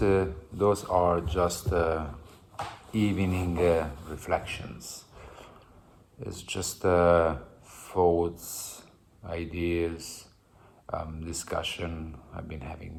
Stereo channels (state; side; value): identical; both; correlation 1.00